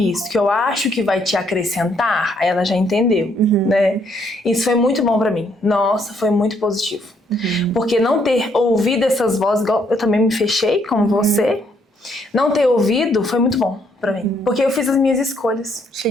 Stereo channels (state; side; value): normal; both; correlation 0.70